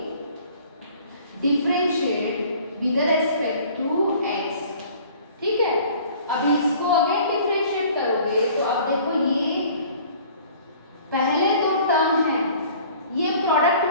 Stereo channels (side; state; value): both; inverted; correlation -0.50